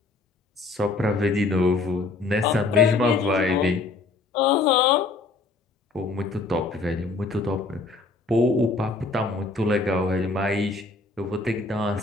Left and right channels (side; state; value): right; quieter; 3.7 dB